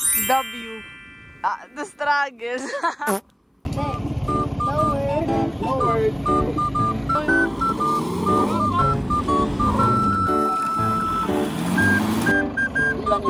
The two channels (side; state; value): both; identical; correlation 1.00